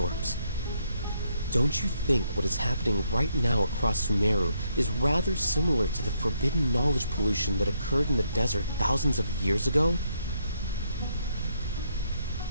Don't you think what is happening right now across Sumeru is rather similar to the forbidden knowledge pollution that occurred in the desert thousands of years ago?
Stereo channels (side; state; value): both; inverted; correlation -0.74